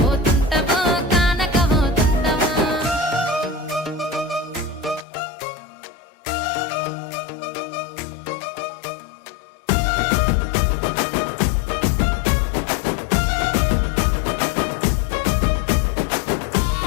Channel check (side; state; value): right; drops out; at 5.1 s